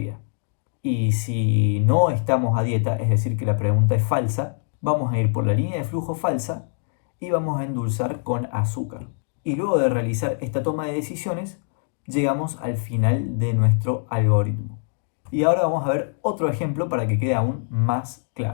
Y si no estamos a dieta, es decir que la pregunta es falsa, vamos a ir por la línea de flujo falsa y vamos a endulzar con azúcar. Y luego de realizar esta toma de decisiones, llegamos al final de nuestro algoritmo. Y ahora vamos a ver otro ejemplo para que quede aún más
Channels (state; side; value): silent; right; digital silence